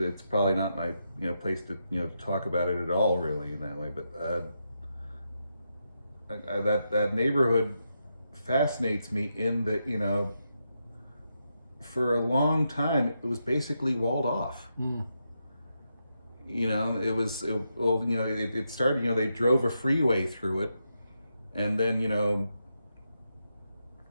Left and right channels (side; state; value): both; inverted; correlation -0.84